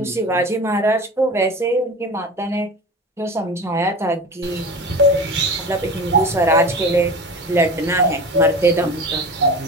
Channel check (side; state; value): both; normal; correlation 0.32